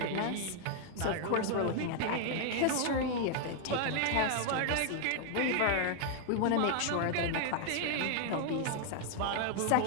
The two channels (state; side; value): different; both; correlation 0.00